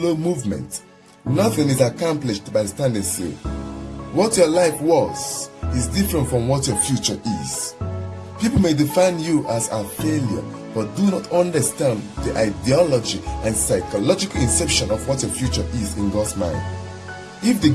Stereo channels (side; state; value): both; identical; correlation 1.00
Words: movement. Nothing is accomplished by standing still. What your life was is different from what your future is. People may define you as a failure, but do not understand the ideology and psychological inception of what your future is in God's mind. If the